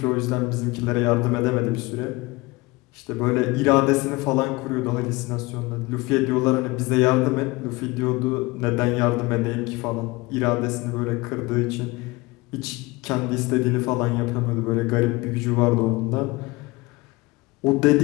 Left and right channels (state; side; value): quieter; right; 22.8 dB